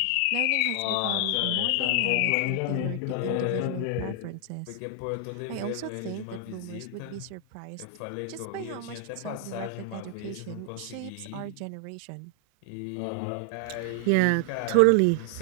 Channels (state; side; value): different; both; correlation 0.00